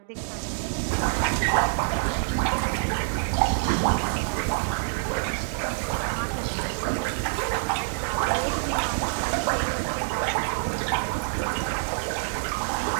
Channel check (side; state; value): left; silent; digital silence